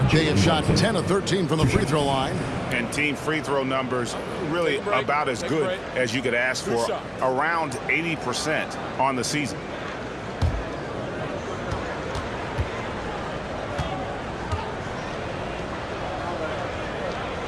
they have shot 10 of 13 from the free throw line. And team free throw numbers really about as good as you could ask for. Around 80% on the season.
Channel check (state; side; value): identical; both; correlation 1.00